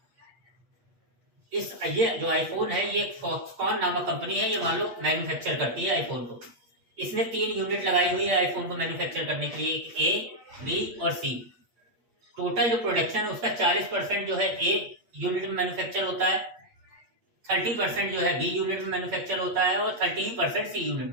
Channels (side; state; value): left; late; 8.5 ms